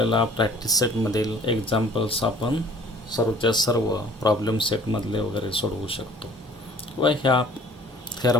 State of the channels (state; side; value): normal; both; correlation 0.52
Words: प्रॅक्टिस सेटमधील एक्झाम्पल्स आपण सर्वच्या सर्व प्रॉब्लेम सेटमधले वगैरे सोडवू शकतो किंवा ह्या